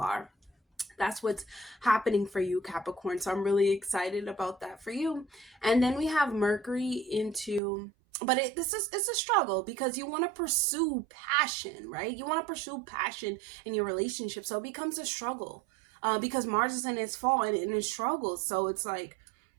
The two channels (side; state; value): left; drops out; at 7.6 s